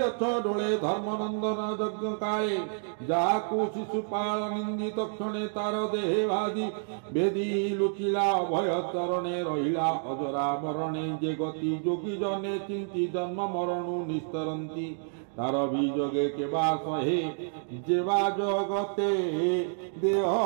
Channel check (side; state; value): left; silent; digital silence